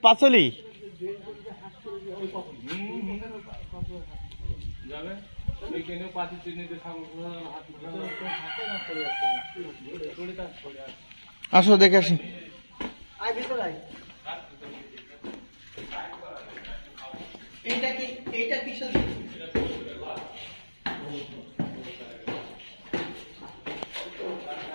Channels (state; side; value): inverted; both; correlation -1.00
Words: পাঁচলি যাবে এখানে পাতি চিনিতে আসো দেখে আসি।